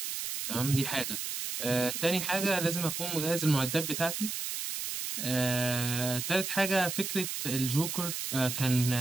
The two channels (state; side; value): noise; right; hiss, 4 dB below the sound